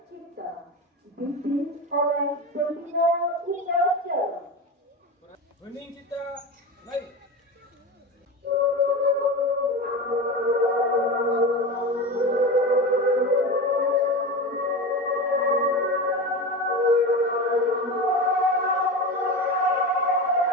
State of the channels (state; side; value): normal; both; correlation 0.24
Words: cipta, dipimpin oleh pembina upacara. Hening cipta, naik.